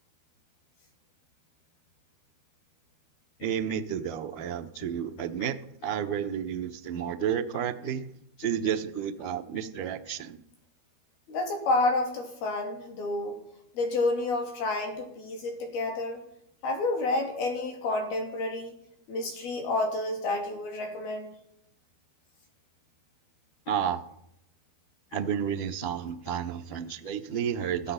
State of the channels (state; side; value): late; right; 12 ms